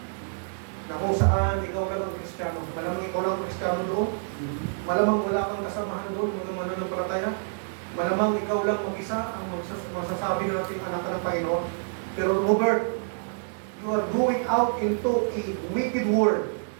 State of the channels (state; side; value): silent; left; digital silence